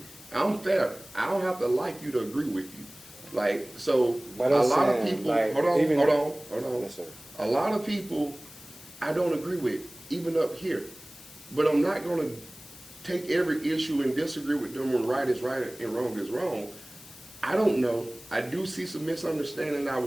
I'm fair. I don't have to like you to agree with you. Like, so But a I'm lot of saying, people, like, hold on. Yes, sir. A lot of people I don't agree with, even up here. But I'm not going to take every issue and disagree with them when right is right and wrong is wrong. I don't know. I do see some misunderstanding. I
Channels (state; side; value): noise; left; hiss, 19 dB below the sound